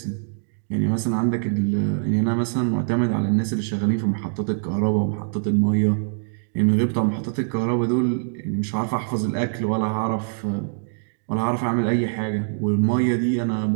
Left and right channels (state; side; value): silent; left; digital silence